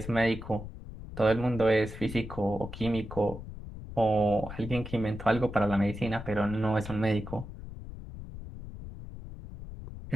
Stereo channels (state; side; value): noise; left; rumble, 11 dB below the sound